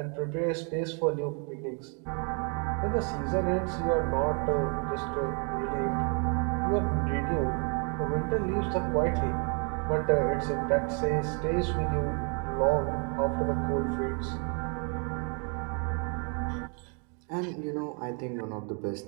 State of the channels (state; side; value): quieter; left; 37.9 dB